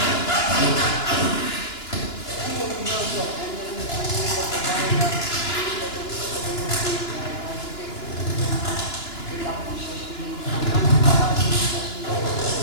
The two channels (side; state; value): right; late; 2.9 ms